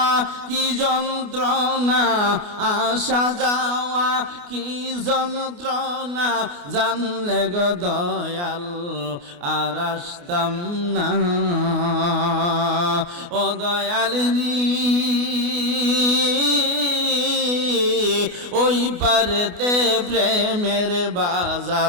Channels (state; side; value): late; left; 28 ms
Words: কি যন্ত্রণা, আসা যাওয়া কি যন্ত্রণা, জানলে গো দয়াল আর আসতাম না। ও দয়াল রে, ওই পারেতে প্রেমের